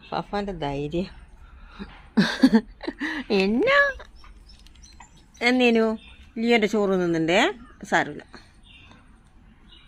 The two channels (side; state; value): both; identical; correlation 1.00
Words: ഫാഫാൻ്റെ ധൈര്യം എന്നാ എന്നേനു ലിയോൻ്റെ ചോറ് തിന്നുണ്ടേ. സാരമില്ല.